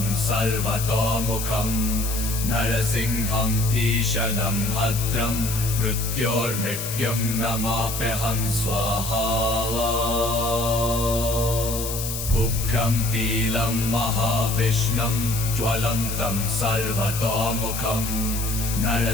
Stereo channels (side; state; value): left; noise; hiss, 5 dB below the sound